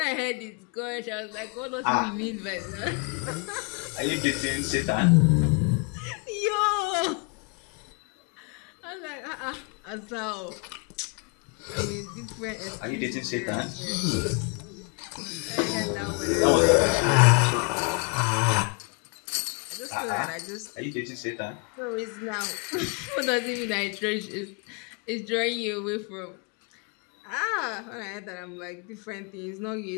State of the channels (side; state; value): right; quieter; 34.1 dB